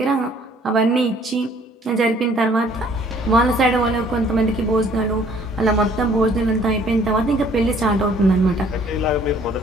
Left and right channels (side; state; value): both; normal; correlation 0.58